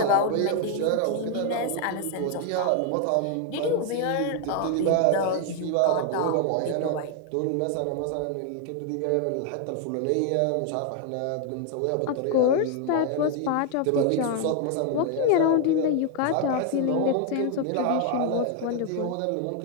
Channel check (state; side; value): different; both; correlation 0.00